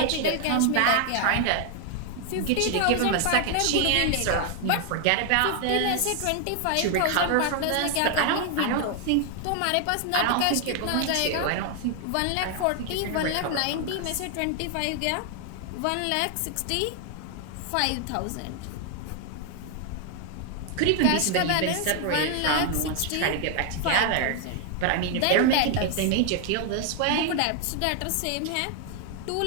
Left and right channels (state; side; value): different; both; correlation 0.00